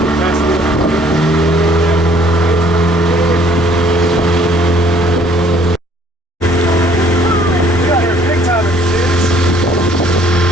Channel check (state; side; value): normal; both; correlation 0.60